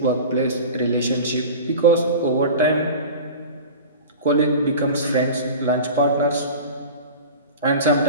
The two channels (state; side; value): inverted; both; correlation -0.35